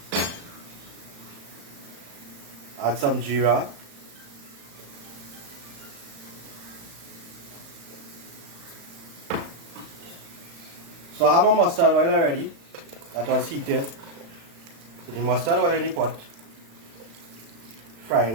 Add some jeera. So I have my mustard oil already that was heated. So the mustard oil in the pot, frying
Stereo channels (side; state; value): left; late; 35 ms